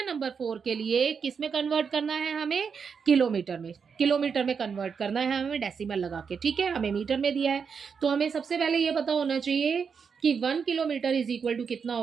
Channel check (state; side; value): quieter; left; 6.2 dB